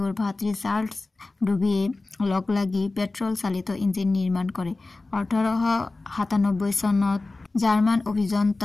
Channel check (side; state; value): right; quieter; 3.3 dB